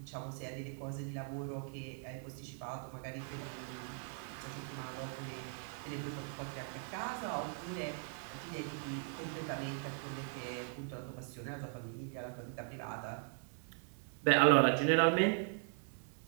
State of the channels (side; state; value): left; silent; 51 dB below the other